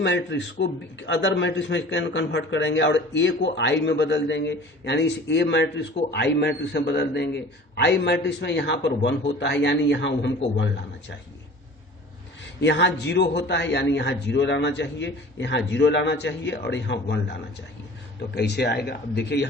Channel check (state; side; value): normal; both; correlation 0.43